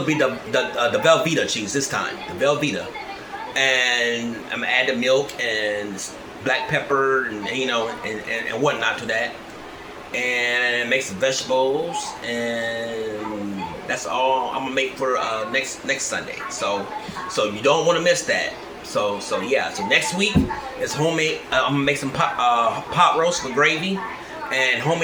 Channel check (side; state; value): both; identical; correlation 1.00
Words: be the Velveeta cheese this time, the Velveeta. And I'm gonna add the milk and black pepper and and whatnot to that, and make some vegetables, and that's all I'm gonna make for next Sunday. So you don't want to miss that. So yeah. So next week is homemade. I'm gonna make some pot roast with gravy and